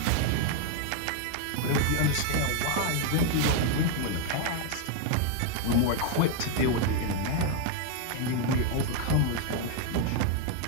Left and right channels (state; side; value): different; both; correlation 0.00